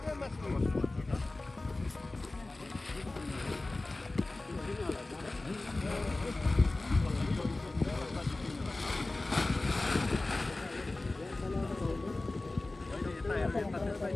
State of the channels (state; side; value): quieter; right; 3.0 dB